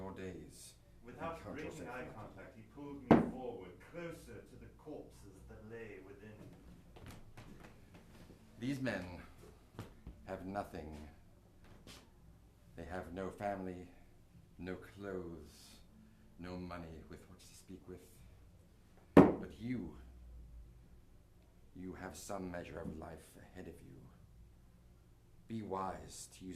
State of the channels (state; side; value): identical; both; correlation 1.00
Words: days. Without breaking eye contact, he pulled me forward, closer to the corpses that lay within. These men have nothing. They have no family, no clothes, no money with which to speak with. But you have some measure of life ahead of you. Be wise to